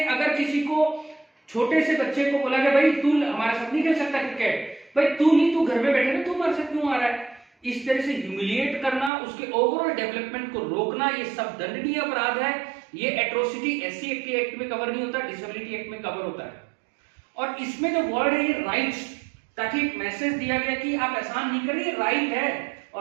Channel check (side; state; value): left; drops out; at 9.1 s